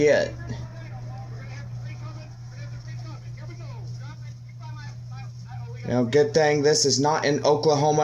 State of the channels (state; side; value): identical; both; correlation 1.00